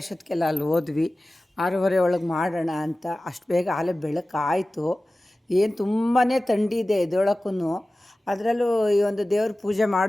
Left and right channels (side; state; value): both; normal; correlation 0.96